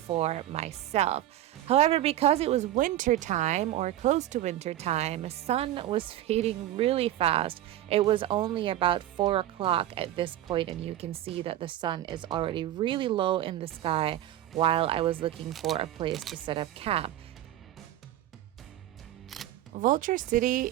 myself. However, because it was winter time or close to winter time, the sun was fading really fast. It was only about 4 o'clock at this point and you can see that the sun is already really low in the sky while I was looking for a place to set up camp. Vulture City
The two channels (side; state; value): left; quieter; 13.3 dB